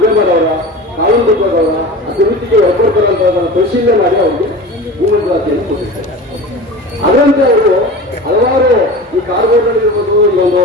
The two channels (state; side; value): normal; both; correlation 0.33